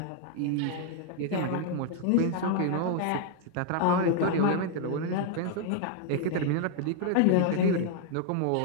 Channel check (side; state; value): both; different; correlation 0.00